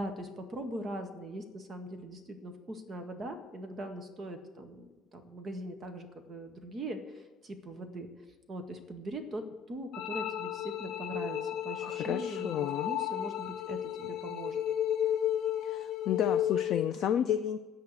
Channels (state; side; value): quieter; right; 6.9 dB